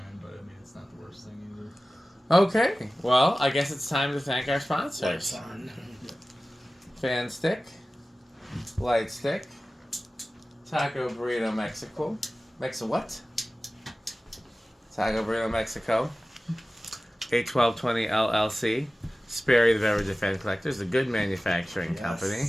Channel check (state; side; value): normal; both; correlation 0.97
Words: but I mean, it's not the worst thing either. Okay, well, I guess it's time to thank our sponsors. Lights on. Fan Stick, Light Stick, Taco Burrito Mexico. What? Taco Burrito Mexico, 81220 LLC, Sperry the Beverage and Fan Collectors, a good manufacturing company,